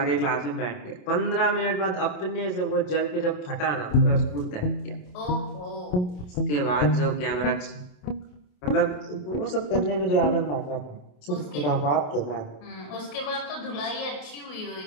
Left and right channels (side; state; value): right; late; 27 ms